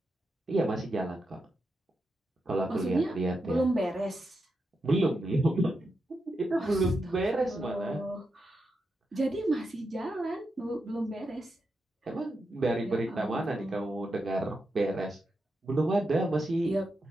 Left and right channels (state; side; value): normal; both; correlation 0.86